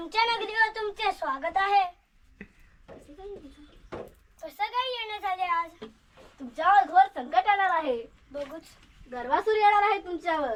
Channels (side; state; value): both; identical; correlation 1.00